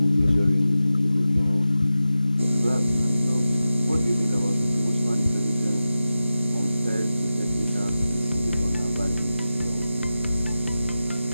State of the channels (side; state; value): both; inverted; correlation -0.93